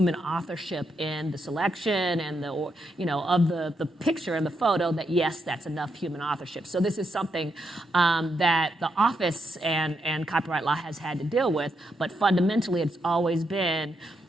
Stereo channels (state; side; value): normal; both; correlation 0.81